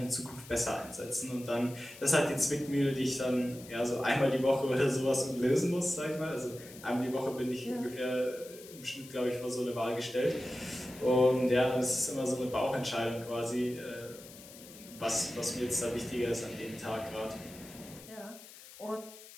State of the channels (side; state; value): left; noise; hiss, 18 dB below the sound